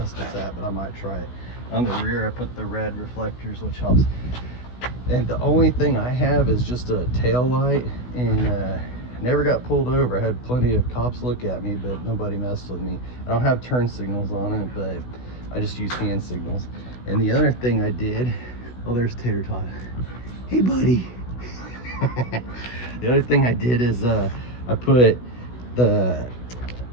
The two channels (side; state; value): right; late; 16 ms